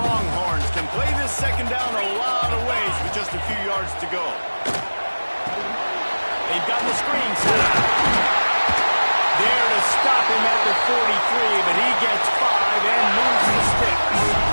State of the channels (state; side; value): inverted; both; correlation -1.00